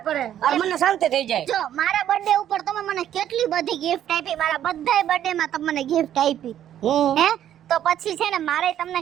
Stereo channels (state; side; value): quieter; left; 10.9 dB